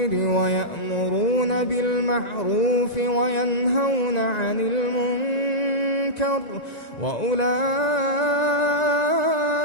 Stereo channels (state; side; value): late; right; 1.9 ms